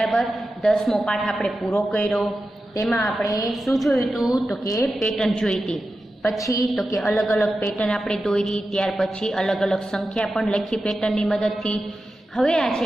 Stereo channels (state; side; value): normal; both; correlation 0.92